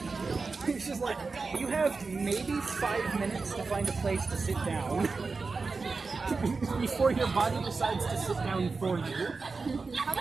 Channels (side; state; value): left; quieter; 4.3 dB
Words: It's just like, you have maybe 5 minutes to find a place to sit down before your body decides to sit down for you.